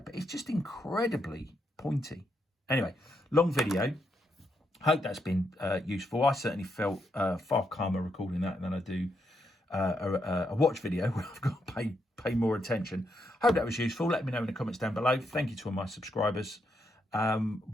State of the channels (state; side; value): normal; both; correlation 0.80